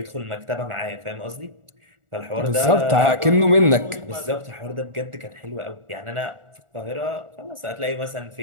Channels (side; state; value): left; late; 1.4 ms